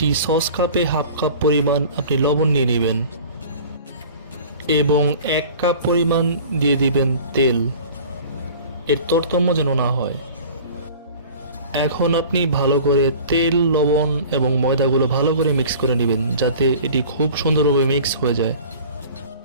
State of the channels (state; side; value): inverted; both; correlation -0.43